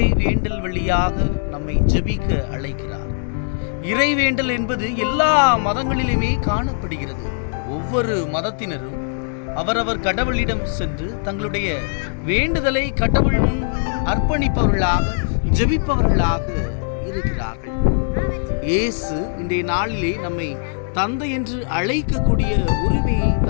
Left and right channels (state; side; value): silent; right; digital silence